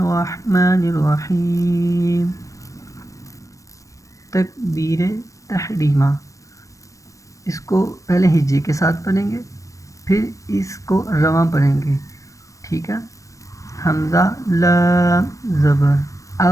الرحیم. تکبیر تحریمہ، اس کو پہلے ہجے کے ساتھ پڑھیں گے، پھر اس کو رواں پڑھیں گے. ٹھیک ہے. حمزہ لام زبر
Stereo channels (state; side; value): late; right; 0.16 ms